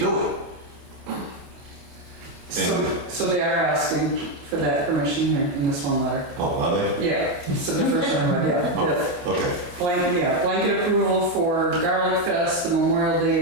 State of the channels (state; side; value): late; left; 28 ms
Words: it. So they are asking for that permission here in this one letter. Oh, are they? Yeah, so the first one I read, yeah. Oh, okay. Blanket approval for Garlic Fest, the Memorial